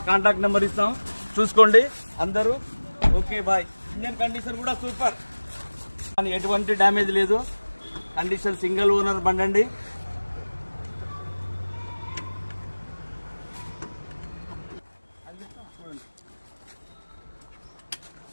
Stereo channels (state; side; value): inverted; both; correlation -1.00